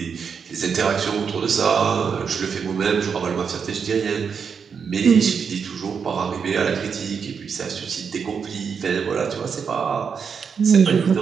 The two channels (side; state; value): left; quieter; 6.3 dB